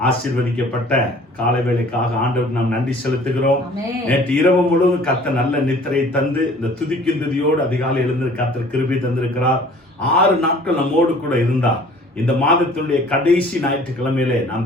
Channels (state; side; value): normal; both; correlation 0.51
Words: ஆசீர்வதிக்கப்பட்ட காலை வேளைக்காக ஆண்டவருக்கு நாம் நன்றி செலுத்துகிறோம். நேற்று இரவு முழுவதும் கர்த்தர் நல்ல நித்திரை தந்து இந்த துதிக்கும் துதியோடு அதிகாலை எழுந்து கர்த்தர் கிருபை தந்திருக்கிறார். 6 நாட்கள் நம்மோடு கூட இருந்தார். இந்த மாதத்தினுடைய கடைசி ஞாயிற்றுக்கிழமையிலே நாம்